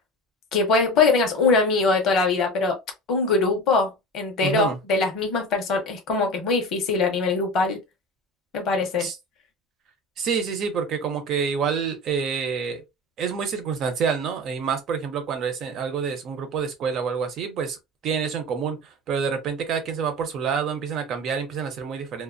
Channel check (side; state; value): both; normal; correlation 0.30